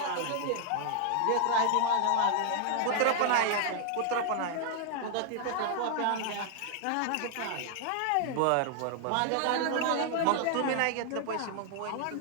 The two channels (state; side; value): different; both; correlation 0.00